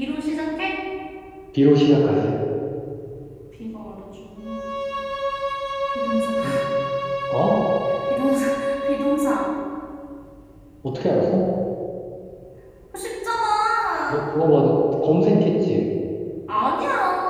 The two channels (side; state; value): both; identical; correlation 1.00